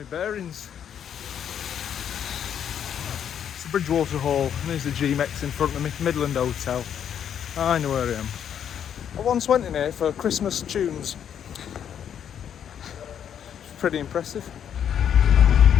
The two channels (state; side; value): quieter; right; 8.9 dB